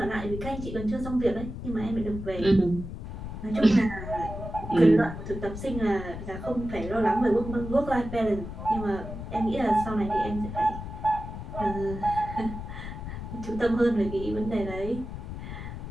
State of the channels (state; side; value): noise; left; rumble, 8 dB below the sound